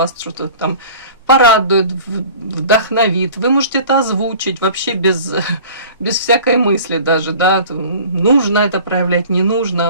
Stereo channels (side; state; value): both; inverted; correlation -0.44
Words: что-то там порадует, вдохновит. Вы можете это озвучить вообще без всякой мысли даже, да, нужно это проявлять, не